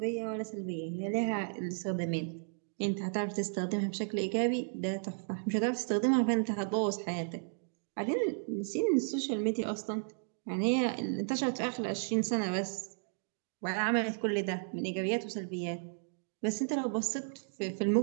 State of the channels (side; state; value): left; silent; digital silence